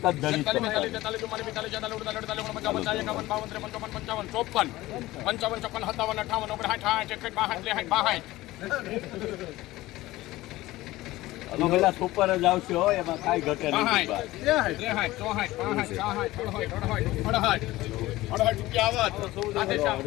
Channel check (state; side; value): quieter; right; 17.7 dB